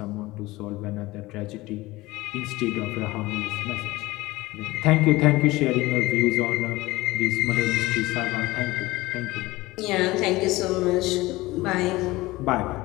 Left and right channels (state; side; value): quieter; right; 19.7 dB